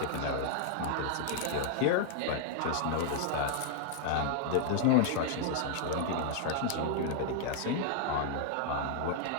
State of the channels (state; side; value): different; both; correlation -0.01